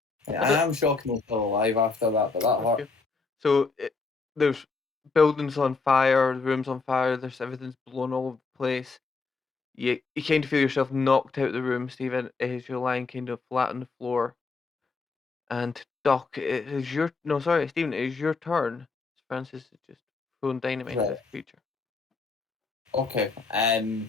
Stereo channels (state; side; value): quieter; right; 4.3 dB